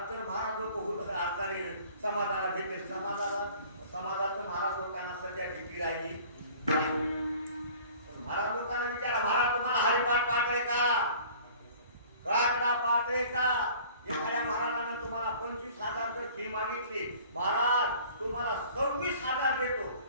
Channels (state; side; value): inverted; both; correlation -0.49